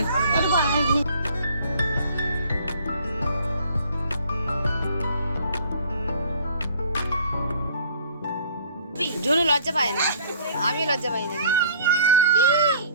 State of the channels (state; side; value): inverted; both; correlation -0.54